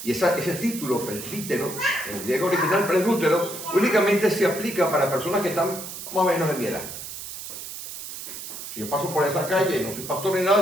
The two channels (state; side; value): noise; right; hiss, 10 dB below the sound